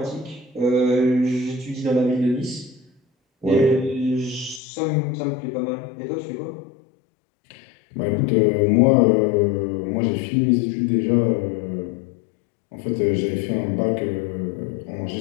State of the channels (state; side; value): drops out; right; at 4.6 s